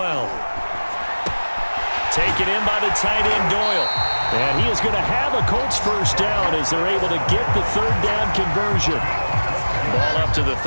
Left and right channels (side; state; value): both; inverted; correlation -1.00